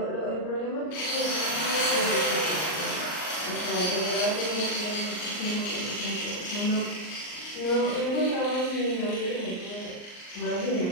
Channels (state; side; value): late; right; 39 ms